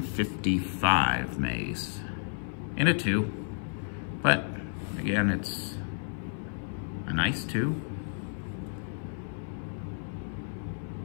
Mays in a 2, but again, it's a nice 2.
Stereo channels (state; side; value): silent; right; 57 dB below the other